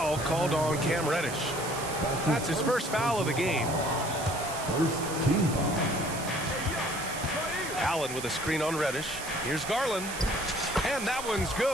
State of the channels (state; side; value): noise; right; hiss, 9 dB below the sound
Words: called on Cam Reddish. That's his first foul of the game. First team foul. Allen with a screen on Reddish. Here's Garland. And that one's